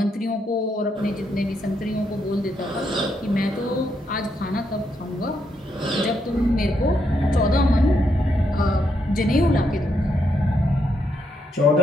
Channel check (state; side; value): normal; both; correlation 0.78